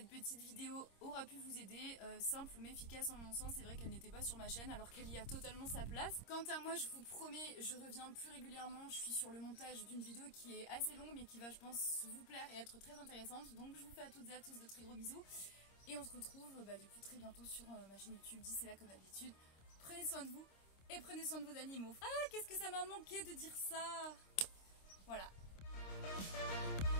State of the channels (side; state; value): right; late; 26 ms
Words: petite vidéo aura pu vous aider, simple mais efficace en mon sens. C'est vrai qu'elle n'était pas sur ma chaîne alors qu'elle y a totalement sa place. Quant à moi, je vous promets, je reviens plus régulièrement. Je suis sur le montage d'une vidéo qui est assez longue mais qui va, je pense, vous plaire et être très intéressante. Donc je vous fais à toutes et à tous de très gros bisous. Et on se retrouve du coup très bientôt sur ma chaîne YouTube. D'ici là, comme d'habitude, prenez soin de vous et prenez soin de vos animaux. Ah, qu'est-ce que ça m'a manqué de dire ça. Voilà. Thank